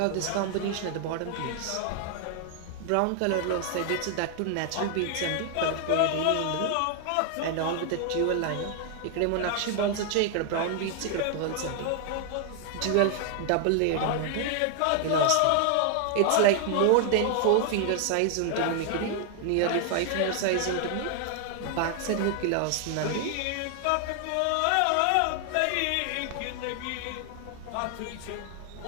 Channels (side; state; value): both; different; correlation 0.00